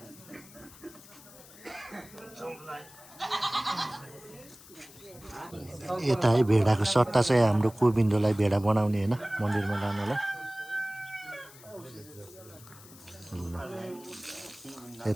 यता है भेडाको सट्टा चाहिँ हाम्रो गोविन्दलाई भेडा बनाउने होइन मन्दिरमा लानलाई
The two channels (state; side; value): noise; left; hiss, 20 dB below the sound